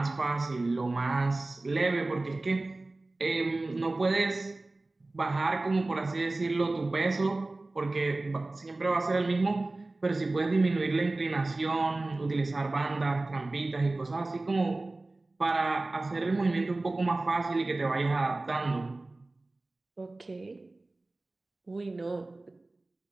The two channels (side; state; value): left; quieter; 3.0 dB